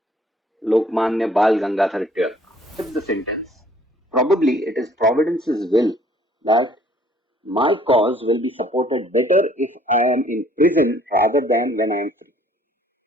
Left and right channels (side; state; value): both; normal; correlation 0.59